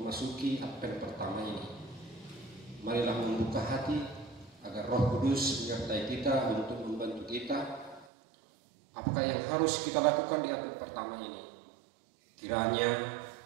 Advent pertama ini. Marilah membuka hati agar Roh Kudus menyertai kita untuk membantu kita. Apakah yang harus kita lakukan di Advent pertama ini? Kiranya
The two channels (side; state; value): left; drops out; at 8.1 s